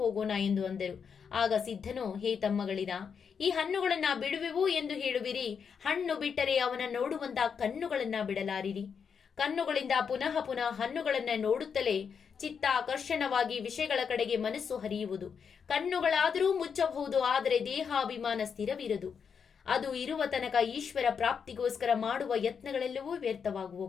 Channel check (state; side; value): quieter; right; 6.6 dB